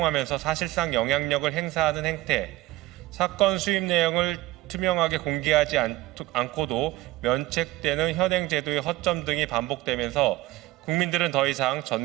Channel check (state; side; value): quieter; left; 18.2 dB